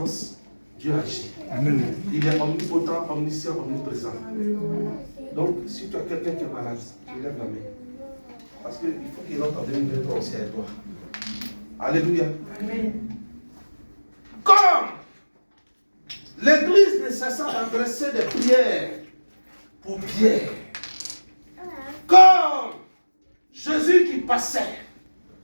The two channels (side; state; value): both; inverted; correlation -1.00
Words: Dieu agit. Amen. Il est omnipotent, omniscient, omniprésent. Donc, si tu as quelqu'un qui est malade, tu lèves la main. Parce qu'il faut qu'il rentre en 2023 aussi avec toi. Alléluia. Amen. Comme l'église ne cessa d'adresser des prières pour Pierre. Comme Jésus qui passait.